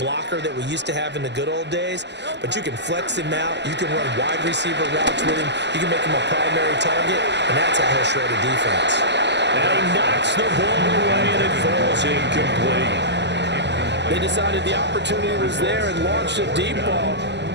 that we used to have in the good old days, but you can flex him out. You can run wide receiver routes with him. You can make him a primary target, and that's how he'll shred a defense. And he knocks the ball away, and it falls incomplete. They decided the opportunity was there and launched a deep ball,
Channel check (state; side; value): late; left; 0.51 ms